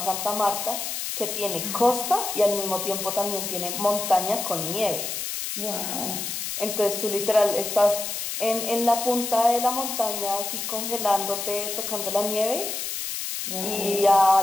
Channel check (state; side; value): noise; left; hiss, 4 dB below the sound